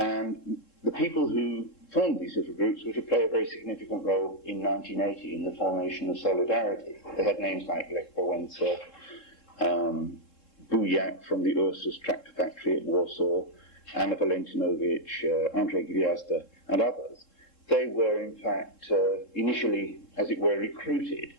the people who formed these little groups were to play a very significant role in 1980 in the formation of Solidarity. They had names like Lech Wałęsa, Bujak from the Ursus tractor factory at Warsaw, Anna Valentinowicz, Andrzej Gwiazda, and others. They were in fact initially, as it were, recruited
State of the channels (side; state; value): right; late; 3.7 ms